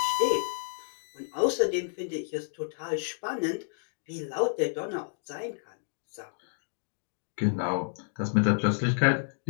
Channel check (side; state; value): right; silent; digital silence